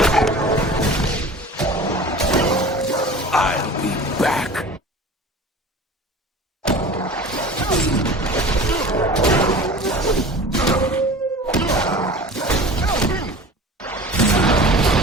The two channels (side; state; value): both; normal; correlation 0.40